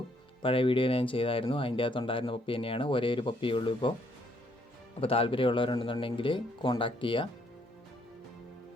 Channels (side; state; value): both; normal; correlation 0.69